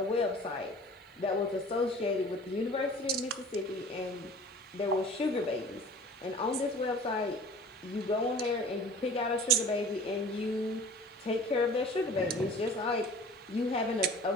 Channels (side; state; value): both; normal; correlation 0.45